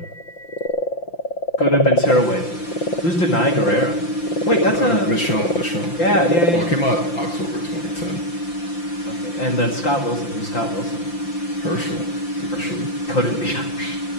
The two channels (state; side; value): late; right; 5.8 ms